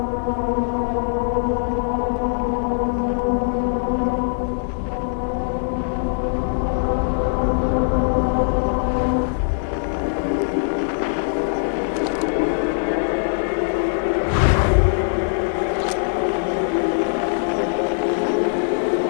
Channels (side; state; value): right; silent; digital silence